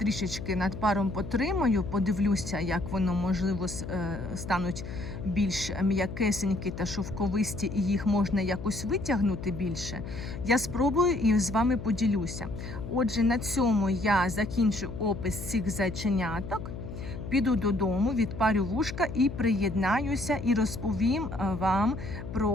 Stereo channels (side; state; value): left; noise; hum, 9 dB below the sound